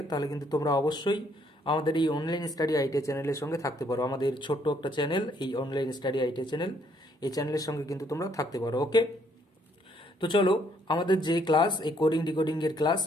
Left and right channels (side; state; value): both; normal; correlation 0.68